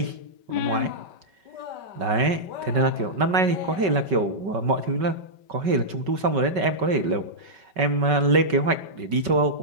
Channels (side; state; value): left; late; 5.3 ms